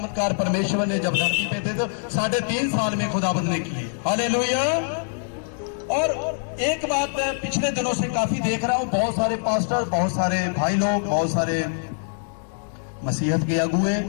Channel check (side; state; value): right; silent; digital silence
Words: परमेश्वर ने जब धरती पे थे तो 3.5 साल में खुदाबंद ने किए। हालेलुया। और एक बात मैं पिछले दिनों से काफी देख रहा हूं, बहुत सारे पास्टर, बहुत सारे भाई लोग, बहुत सारे मसीहत के अगुए